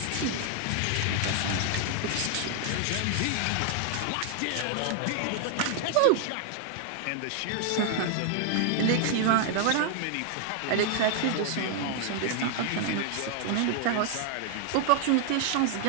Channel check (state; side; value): different; both; correlation 0.00